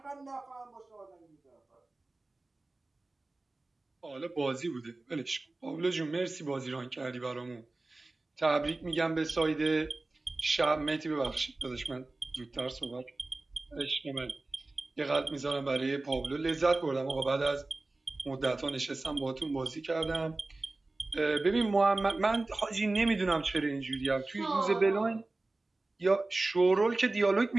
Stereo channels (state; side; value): quieter; left; 3.1 dB